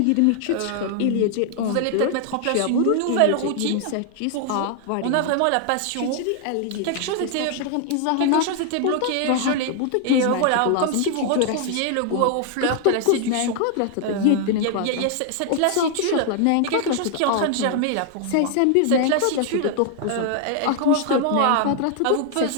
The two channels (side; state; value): both; different; correlation 0.00